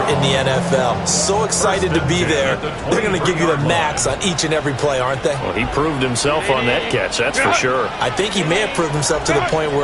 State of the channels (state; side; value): identical; both; correlation 1.00